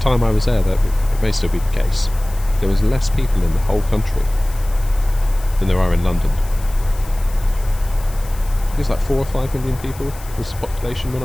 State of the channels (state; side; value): noise; left; hiss, 19 dB below the sound